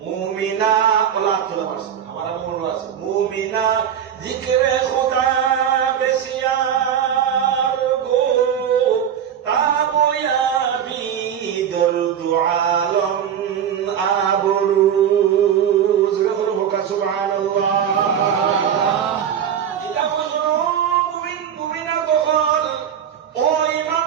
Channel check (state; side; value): quieter; left; 8.9 dB